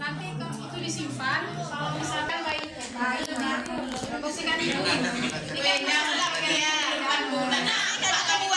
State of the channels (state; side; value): identical; both; correlation 1.00